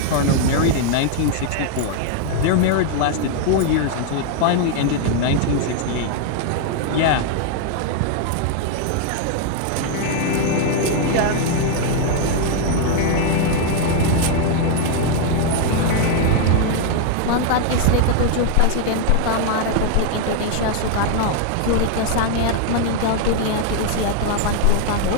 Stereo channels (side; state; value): both; different; correlation 0.00